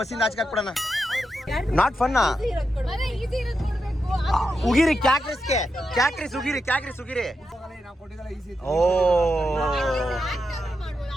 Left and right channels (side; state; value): both; normal; correlation 0.87